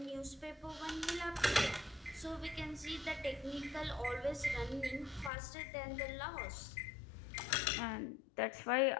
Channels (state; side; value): drops out; right; at 5.3 s